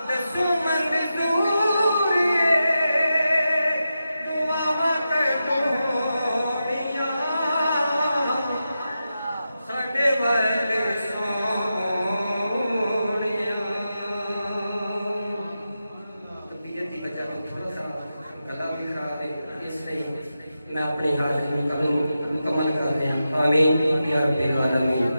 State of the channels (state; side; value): inverted; both; correlation -0.90